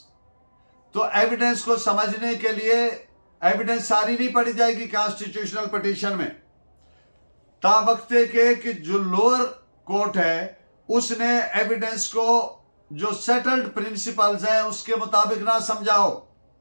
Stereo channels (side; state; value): both; inverted; correlation -1.00